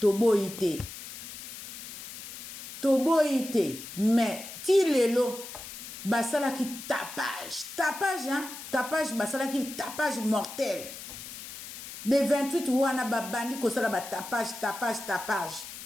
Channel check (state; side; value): noise; left; hiss, 12 dB below the sound